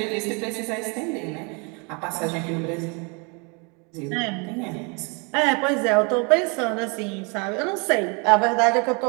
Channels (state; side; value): quieter; left; 32.7 dB